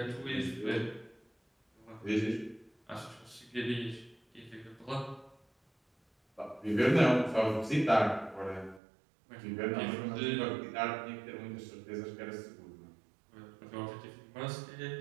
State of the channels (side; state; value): left; drops out; at 8.8 s